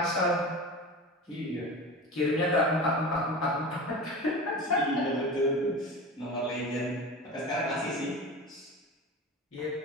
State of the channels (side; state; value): both; normal; correlation 0.31